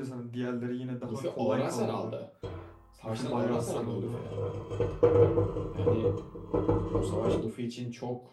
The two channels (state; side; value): identical; both; correlation 1.00